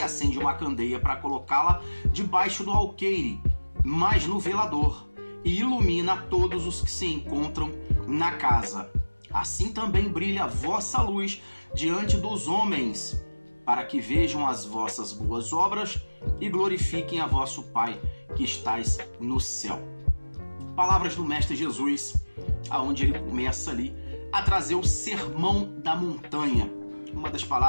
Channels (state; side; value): inverted; both; correlation -1.00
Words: acende uma candeia para colocá-la debaixo do alqueire, mas no velador, e ilumina todos os que se encontram na casa. Assim também brilha a vossa luz diante dos homens, para que vejam as vossas boas obras e glorifiquem a vosso Pai que estais no céu. Palavras do Mestre Jesus, aonde ele começa ali a trazer o Sermão da Montanha, uma das